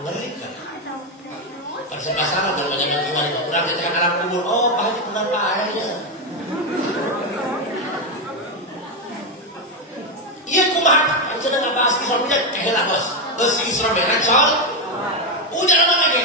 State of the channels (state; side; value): normal; both; correlation 0.07